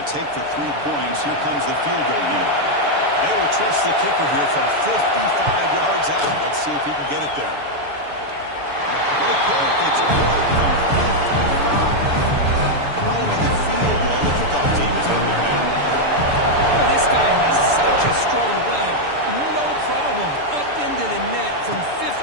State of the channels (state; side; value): late; left; 6.9 ms